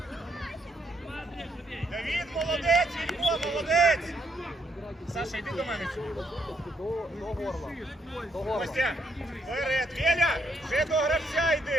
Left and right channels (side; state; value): both; normal; correlation 0.73